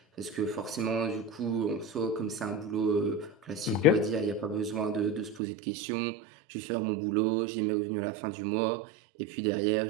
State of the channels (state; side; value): drops out; left; at 5.4 s